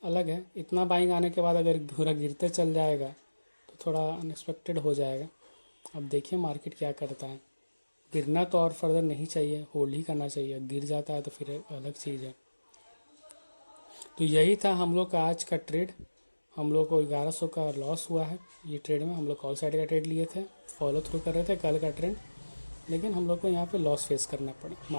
अलग है। इतना बाइंग आने के बाद अगर पूरा गिरते चल जाएगा तो थोड़ा अनएक्सपेक्टेड हो जाएगा। अब देखिए मार्केट क्या करता है। गिरना तो और फर्दर नहीं चाहिए, होल्ड ही करना चाहिए। गिर जाता है तो फिर एक अलग चीज़ है। तो यही था हम लोग का आज का ट्रेड। हम लोग को 1100 का लॉस हुआ है ये ट्रेड में। हम लोग कॉल साइड का ट्रेड लिए थे, फॉलो थ्रू कर रहे थे कल का ट्रेंड, लेकिन हम लोग को यहाँ पे लॉस फेस करना पड़ा।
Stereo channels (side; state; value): both; inverted; correlation -1.00